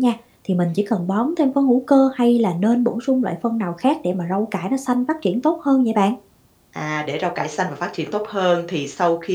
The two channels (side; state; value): both; identical; correlation 1.00